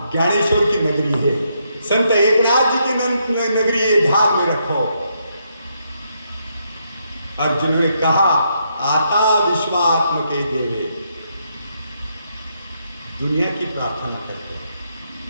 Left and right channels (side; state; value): both; inverted; correlation -0.77